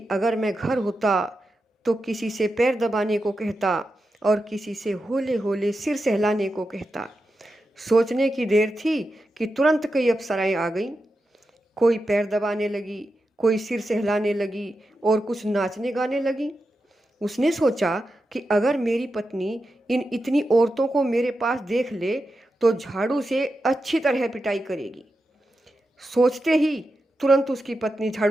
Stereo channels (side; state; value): both; normal; correlation 0.89